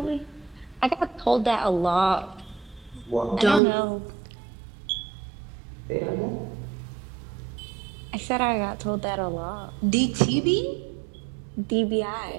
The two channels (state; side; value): drops out; left; at 3.6 s